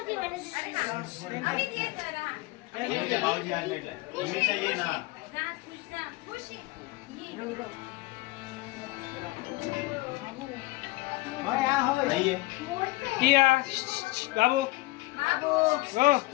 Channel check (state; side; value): quieter; right; 20.7 dB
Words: भाऊजी आज भेटलाय. उमेशा ये ना. नाहीये. बाबू हो